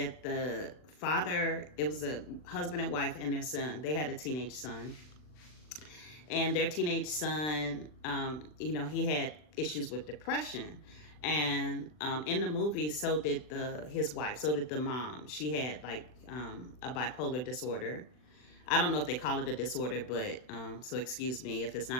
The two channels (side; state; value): right; late; 39 ms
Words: the father, it was a husband and wife and their son. They had a teenage son, and their teenage son, he had issues with depression. And in the movie, so did his wife, so did the mom. She had like a bipolar disorder. I don't know if they call it a disorder, but so excuse me if it's